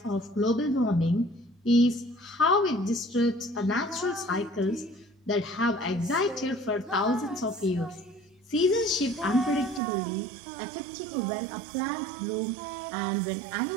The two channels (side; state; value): left; drops out; at 9.8 s